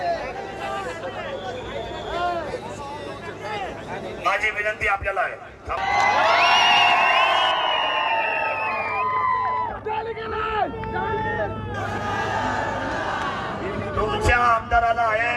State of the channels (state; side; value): identical; both; correlation 1.00